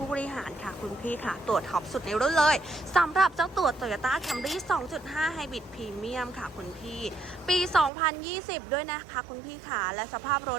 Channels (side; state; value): left; drops out; at 7.9 s